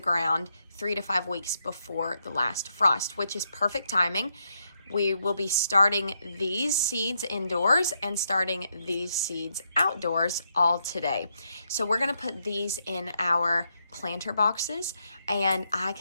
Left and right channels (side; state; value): both; inverted; correlation -0.79